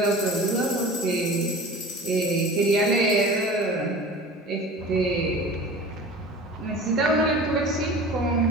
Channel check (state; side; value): normal; both; correlation 0.39